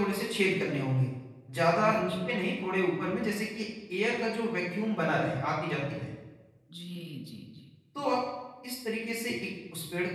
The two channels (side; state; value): both; identical; correlation 1.00